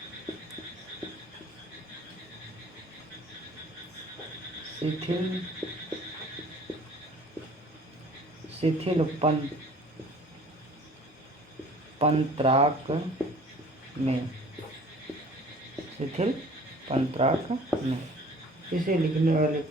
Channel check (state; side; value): normal; both; correlation 0.50